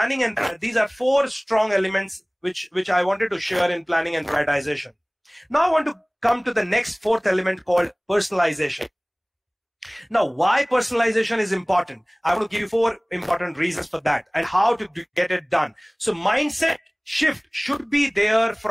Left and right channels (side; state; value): both; identical; correlation 1.00